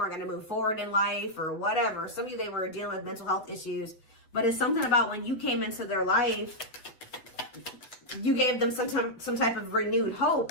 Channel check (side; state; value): right; late; 8.1 ms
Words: going to move forward in life or whatever. Some of you, they were dealing with mental health issues, but it's something about when you came into their life, you gave them some type of renewed hope.